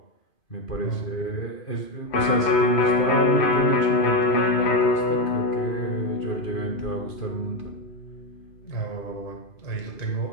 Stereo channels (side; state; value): right; late; 2.4 ms